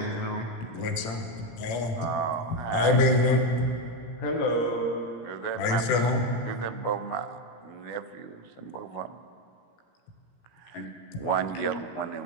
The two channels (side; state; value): right; late; 18 ms